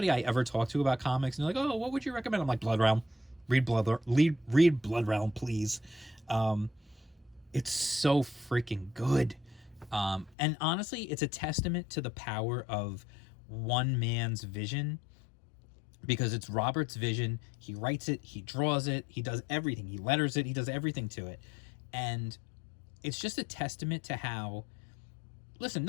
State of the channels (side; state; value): right; drops out; at 10.4 s